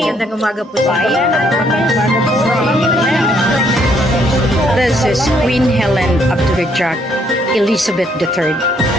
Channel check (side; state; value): both; normal; correlation 0.69